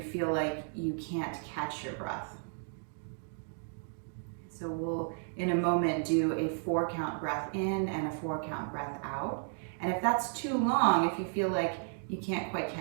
feel like you can't catch your breath. So we'll, in a moment, do a 4-count breath in and a 4-count breath out. And if that's too long, if you feel like you can't quite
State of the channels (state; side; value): silent; left; 55 dB below the other